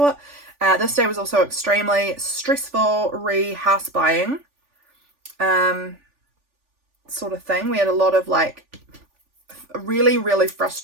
This day was also extremely stressful house buying. Sort of thing. We had a lot of like a really, really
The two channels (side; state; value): left; late; 3.4 ms